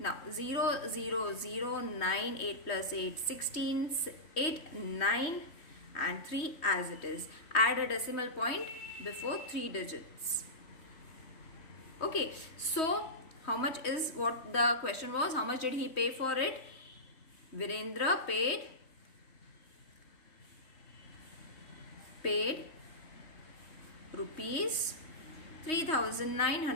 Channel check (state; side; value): late; right; 3.1 ms